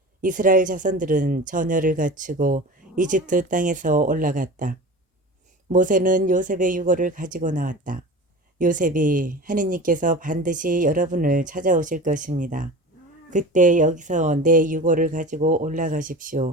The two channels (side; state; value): both; normal; correlation 0.34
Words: 이스라엘 자손들은 전열을 갖추고 이집트 땅에서 올라갔다. 모세는 요셉의 유고를 가지고 나왔다. 요셉이 하느님께서 반드시 여러분을 찾아오실 것입니다. 그때 여기서 내 유고를 가지고